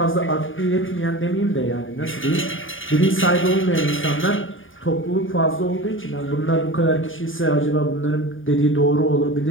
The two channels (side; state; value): right; late; 0.58 ms